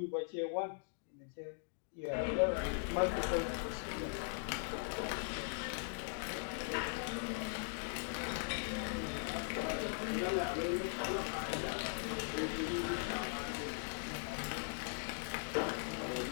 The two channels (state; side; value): silent; right; digital silence